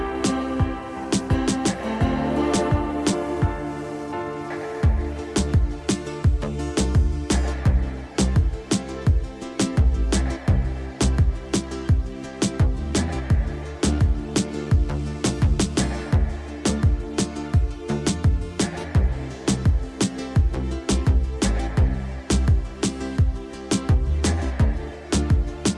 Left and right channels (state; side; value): identical; both; correlation 1.00